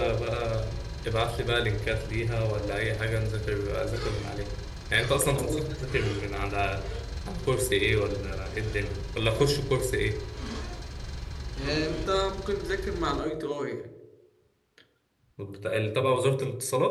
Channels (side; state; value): both; identical; correlation 1.00